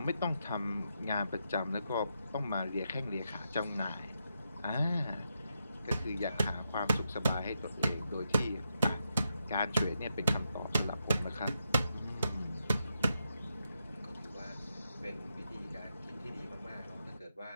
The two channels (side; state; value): both; inverted; correlation -0.84